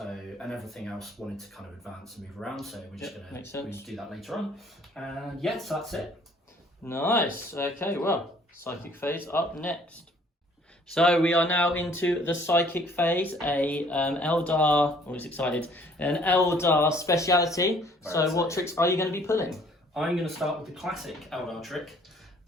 and everything else wanted to kind of advance and move around, so we're just going to do that later on. And yes, that's it. Nice. Okay, well, psychic phase up next. So we are now into the psychic phase, a Eldar, always excited, an Eldar speciality. So what tricks are you going to be pulling? I'm going to start with the classic Eldar trick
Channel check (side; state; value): both; normal; correlation 0.58